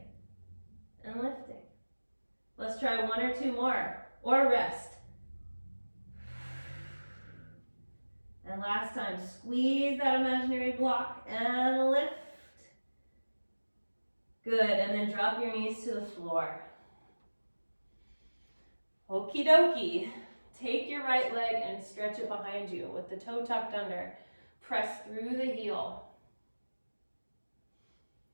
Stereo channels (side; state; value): both; inverted; correlation -1.00